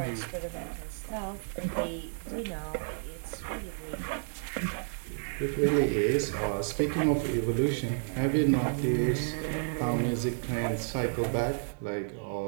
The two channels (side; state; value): left; silent; 57 dB below the other